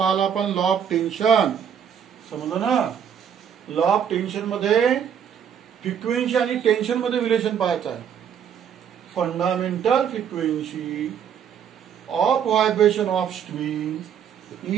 आपण लॉ ऑफ टेन्शन. समजलं ना. लॉ ऑफ टेन्शन मध्ये फ्रिक्वेन्सी आणि टेन्शन मध्ये रिलेशन पाहायचं आहे. Fundamental frequency of vibration of string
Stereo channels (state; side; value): quieter; left; 8.3 dB